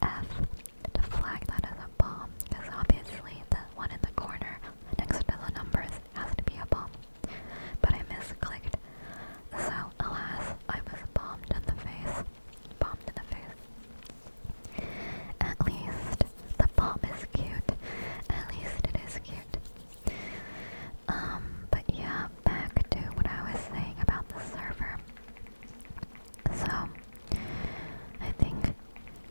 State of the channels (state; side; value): inverted; both; correlation -1.00